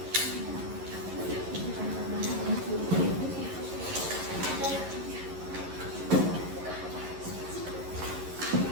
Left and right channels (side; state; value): left; late; 11 ms